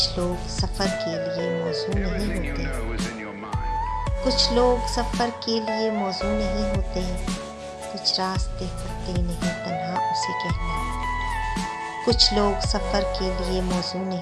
लोग सफ़र के लिए मौजू नहीं होते, कुछ लोग सफ़र के लिए मौजू नहीं होते, कुछ रास्ते कटते नहीं तन्हा उसे कहना। कुछ लोग सफ़र के लिए मौजू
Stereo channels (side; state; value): both; identical; correlation 1.00